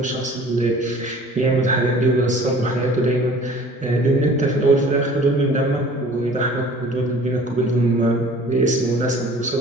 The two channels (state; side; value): normal; both; correlation 0.48